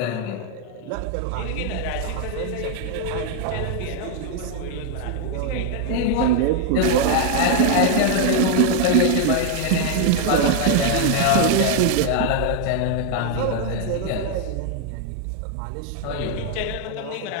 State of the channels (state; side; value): different; both; correlation 0.00